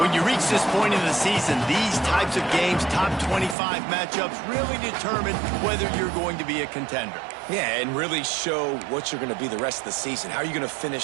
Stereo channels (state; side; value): drops out; left; at 3.6 s